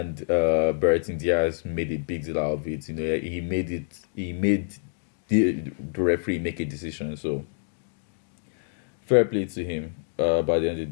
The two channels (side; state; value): right; silent; digital silence